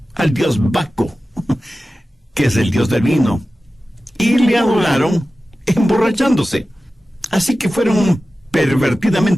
al dios Baco, que es el dios del vino, y le adoraron emborrachándose. Así que fueron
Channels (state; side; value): normal; both; correlation 0.95